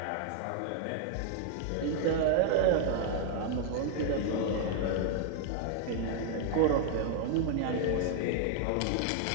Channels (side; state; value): both; different; correlation 0.00